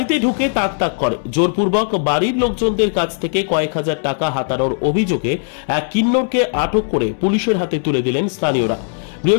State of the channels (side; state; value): right; silent; digital silence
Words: ঢুকে তাক তাক করে জোরপূর্বক বাড়ির লোকজনদের কাছ থেকে কয়েক হাজার টাকা হাতানোর অভিযোগে এক কিন্নরকে আটক করে পুলিশের হাতে তুলে দিলেন স্থানীয়রা।